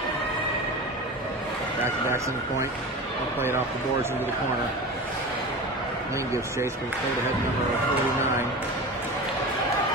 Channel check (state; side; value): normal; both; correlation 0.30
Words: Back to Daxton point. They'll play it off the boards into the corner. Lane gives chase, but it's played ahead number 49.